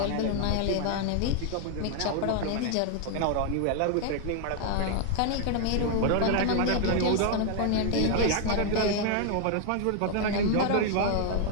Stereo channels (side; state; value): both; different; correlation 0.00